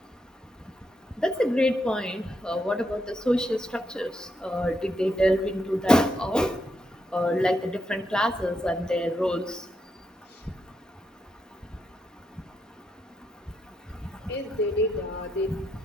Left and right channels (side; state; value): both; normal; correlation 0.81